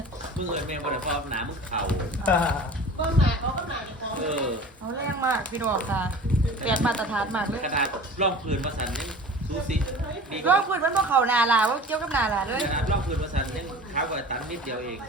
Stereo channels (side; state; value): both; normal; correlation 0.40